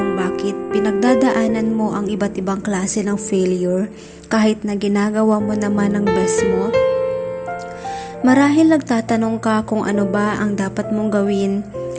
bakit pinagdadaanan mo ang iba't ibang klase ng failure kahit na ginagawa mo naman ang best mo? Marahil nagtatanong ka kung ano ba ang dapat mong gawin,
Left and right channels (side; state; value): both; identical; correlation 1.00